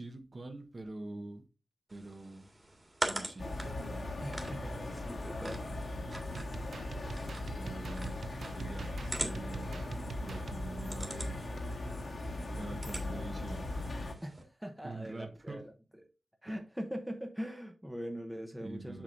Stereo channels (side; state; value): both; normal; correlation 0.92